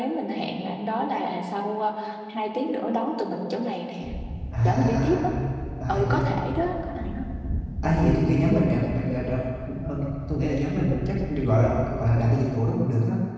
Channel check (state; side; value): identical; both; correlation 1.00